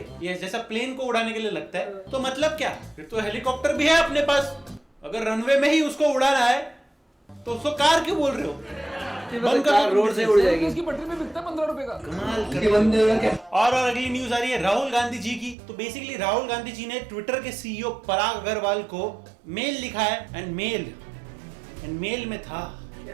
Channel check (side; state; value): left; drops out; at 15.6 s